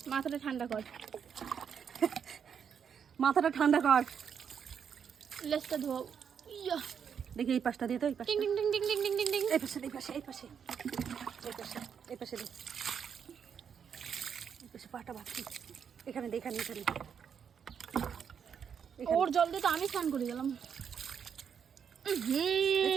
মাথাটা ঠান্ডা কর। মাথাটা ঠান্ডা কর। লেজটা ধোও। ইয়া দেখি এই পাশটা দিয়ে তো, এই পাশে, টিং টিং টিং টিং টিং টিং টিং টিং। এই পাশে এই পাশে এই পাশে এই পাশে এই পাশে দে, এই পাশে পাটা বাঁধছি। এখানে দে, এখানে এখানে। ওর জল দিয়ে তো আমি স্নান করে গেলাম।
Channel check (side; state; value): left; quieter; 7.4 dB